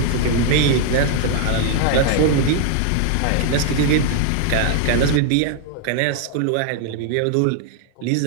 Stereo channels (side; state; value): both; different; correlation 0.00